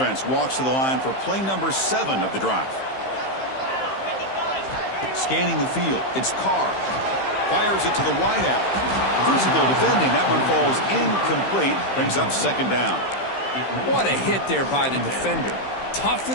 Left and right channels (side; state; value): right; late; 15 ms